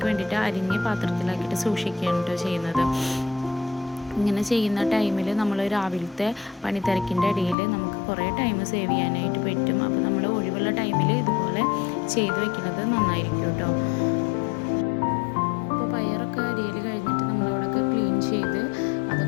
വേണ്ടിയിട്ട് അരിഞ്ഞ് പാത്രത്തിലാക്കിയിട്ട് സൂക്ഷിക്കുകയാണ് കേട്ടോ ചെയ്യുന്നത്. ഇങ്ങനെ ചെയ്യുന്ന ടൈമിൽ നമ്മൾ രാവിലത്തെ പണിത്തിരക്കിൻ്റെ ഇടയിൽ നമുക്ക് കുറേ ടൈം സേവ് ചെയ്യാനായിട്ട് പറ്റും. അപ്പോൾ നമ്മൾ ഒഴിവുള്ള ടൈമിൽ ഇതുപോലെ ചെയ്ത് വെക്കുന്നത് നന്നായിരിക്കും കേട്ടോ. അപ്പോൾ പയറൊക്കെ അരിയൽ കഴിഞ്ഞിട്ട് നമ്മളവിടെയൊക്കെ ക്ലീൻ ചെയ്ത്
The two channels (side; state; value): right; drops out; at 7.6 s